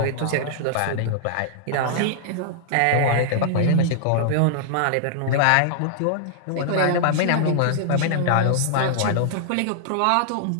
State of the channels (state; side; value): different; both; correlation -0.01